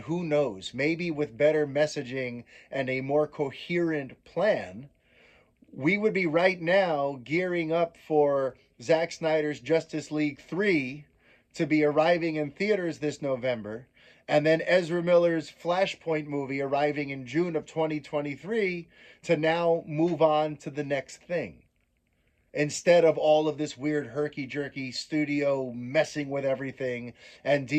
who knows, maybe with better messaging and a more coherent plan, we would be right now gearing up for Zack Snyder's Justice League 3 to be arriving in theaters this November, and then Ezra Miller's Flashpoint movie arriving in June of 2023 to now move on to the next thing. Instead of all of this weird herky-jerky studio messing with everything and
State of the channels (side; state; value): both; identical; correlation 1.00